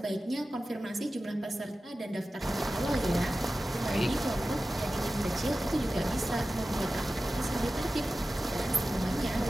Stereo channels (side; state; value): both; normal; correlation 0.94